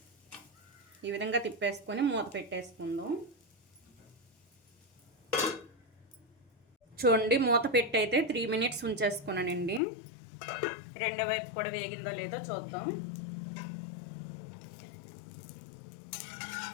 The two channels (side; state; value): right; drops out; at 9.8 s